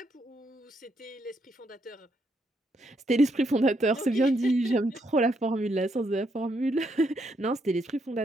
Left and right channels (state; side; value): normal; both; correlation 0.76